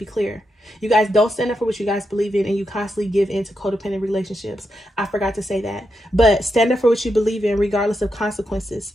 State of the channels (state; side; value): normal; both; correlation 0.85